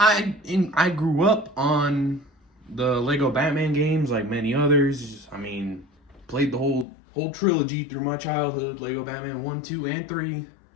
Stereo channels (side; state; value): right; drops out; at 6.9 s